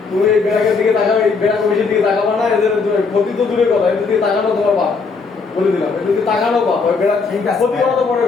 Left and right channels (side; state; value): right; quieter; 4.7 dB